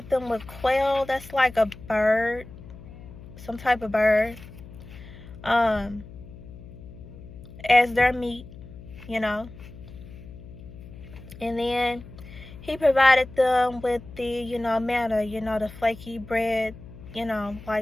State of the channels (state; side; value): noise; left; hum, 16 dB below the sound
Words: them with quail, that's like a bird, some type of bird, as their meat, And then he provided them with the, manna, the flaky bread,